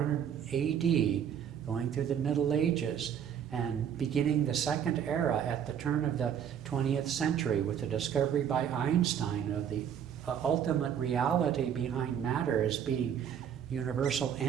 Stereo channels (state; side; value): quieter; left; 8.7 dB